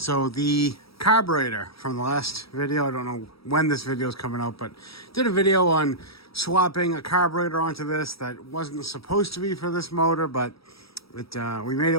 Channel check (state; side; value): late; right; 0.76 ms